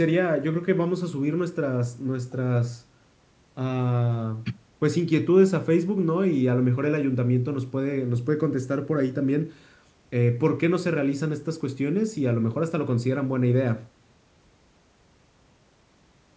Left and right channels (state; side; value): identical; both; correlation 1.00